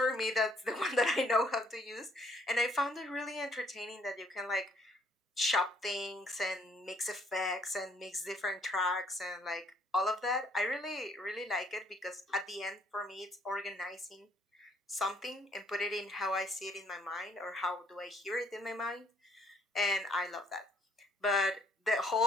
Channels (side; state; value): both; normal; correlation 0.65